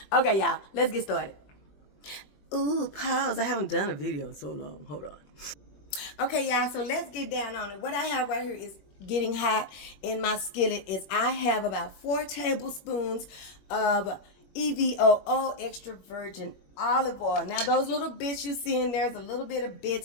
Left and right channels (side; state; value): right; late; 21 ms